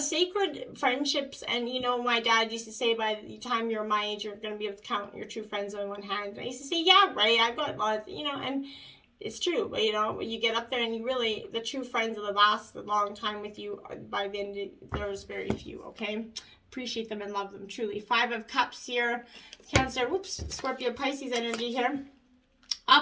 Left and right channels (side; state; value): both; identical; correlation 1.00